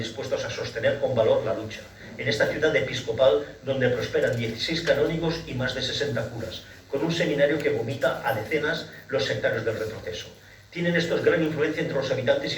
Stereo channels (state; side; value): identical; both; correlation 1.00